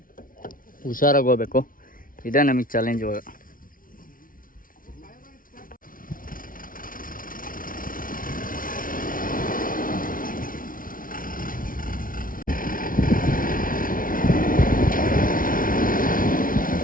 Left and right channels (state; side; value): late; right; 0.40 ms